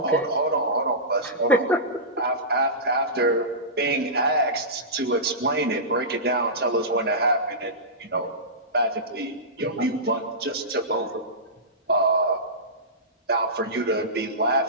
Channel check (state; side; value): normal; both; correlation -0.19